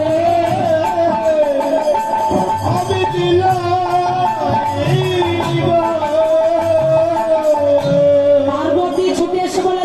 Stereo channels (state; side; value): identical; both; correlation 1.00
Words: আমি বিলাই গো। পার্বতী ছুটে এসে বলে,